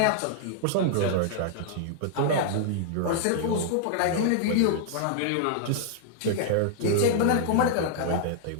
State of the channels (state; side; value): different; both; correlation -0.01